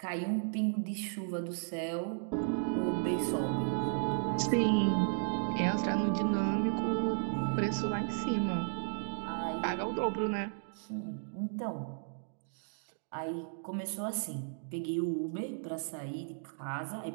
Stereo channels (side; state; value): left; silent; digital silence